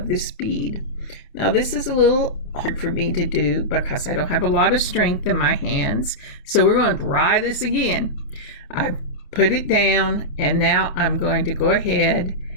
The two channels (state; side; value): late; right; 28 ms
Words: this bead. Now this is a little hard for me to do because I don't have a lot of strength in my hands. So we're going to try this again. I put it down and now I'm going to go ahead